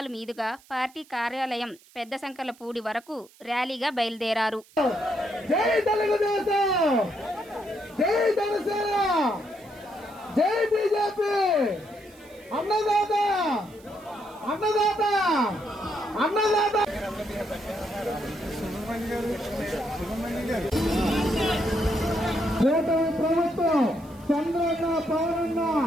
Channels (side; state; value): right; noise; hiss, 27 dB below the sound